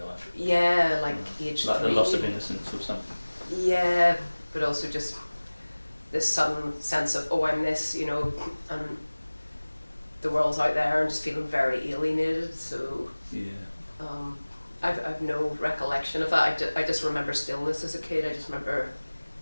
Yeah, like age 3. Like the loss of innocence or something? Yeah, but also just this sudden sense of, oh, I'm this, you know, and the world's out there, and just feeling very alienated. So yeah. I've no recollection of that. I just remember stillness as a kid. I just remember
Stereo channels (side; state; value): both; inverted; correlation -1.00